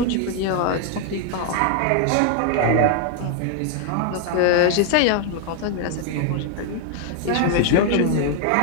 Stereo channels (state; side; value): different; both; correlation 0.00